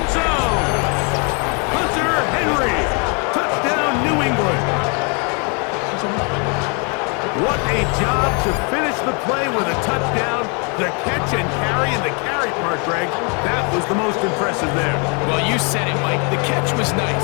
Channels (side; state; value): right; quieter; 35.1 dB